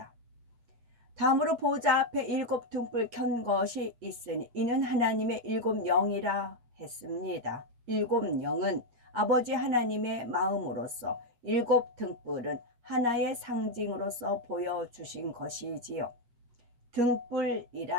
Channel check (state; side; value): late; left; 8.4 ms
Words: 다음으로 보호자 앞에 7 등불 켠 것이 있으니 이는 하나님의 7 영이라 했습니다. 7 영은 아버지 하나님의 마음으로서 7 등불은 하나의 상징으로서 보여주신 것이지요.